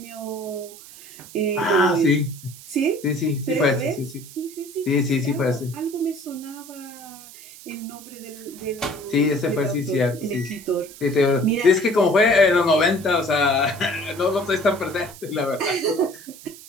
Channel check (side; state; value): right; noise; hiss, 18 dB below the sound